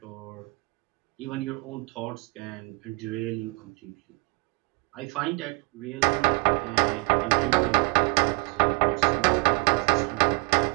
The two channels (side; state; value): left; quieter; 28.3 dB